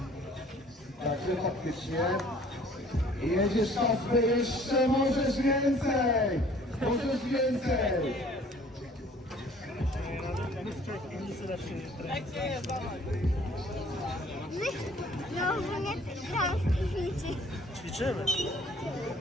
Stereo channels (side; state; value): both; normal; correlation 0.54